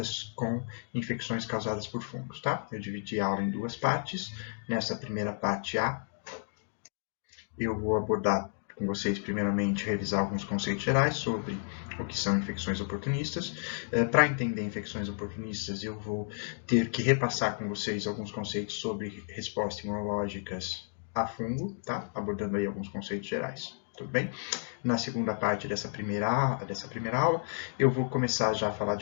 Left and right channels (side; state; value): right; silent; digital silence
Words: com infecções causadas por fungos, tá? Eu dividi a aula em duas partes. Nessa primeira parte A, eu vou abordar com vocês, primeiramente, revisar alguns conceitos gerais sobre o que são infecções oportunistas. Para entender infecções oportunistas, eu vou ter que repassar com vocês alguns conceitos sobre respostas imunológicas a fungo, tá? Abordando aí alguns conceitos gerais. Tudo bem? Na segunda parte dessa primeira aula, eu vou começar já a falar